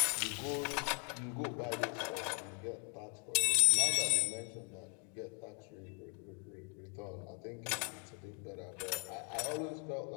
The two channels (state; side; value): quieter; right; 34.2 dB